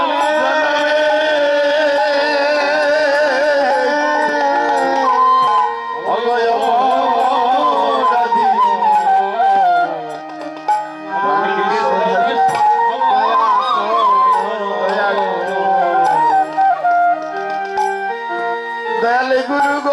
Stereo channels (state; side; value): identical; both; correlation 1.00